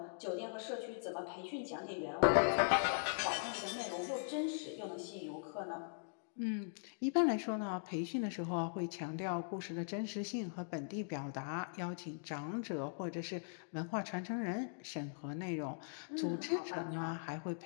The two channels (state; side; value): silent; right; digital silence